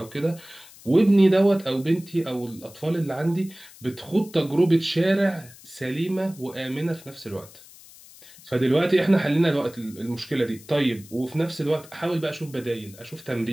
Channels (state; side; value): noise; left; hiss, 21 dB below the sound